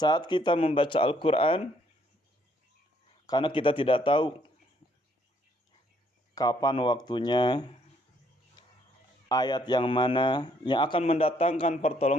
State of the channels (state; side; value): normal; both; correlation 0.67